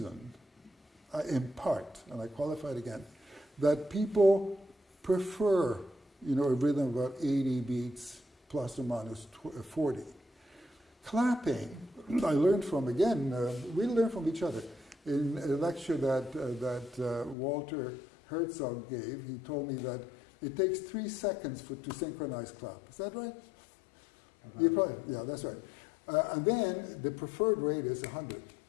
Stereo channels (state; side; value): drops out; right; at 17.4 s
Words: in part, and I qualify it again, that people prefer, you know, a rhythm of about 80 beats plus or minus 40. Clapping, I learned from, again, we learn from each other. In a lecture that Walter Herzog gave, he told me that it takes 3 seconds to synchronize clap. Is that right? You probably, yeah, that's right. And then the preferred rate is 100.